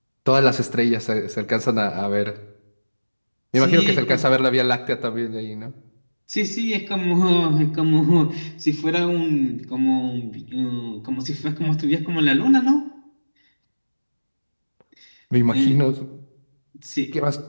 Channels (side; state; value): both; inverted; correlation -1.00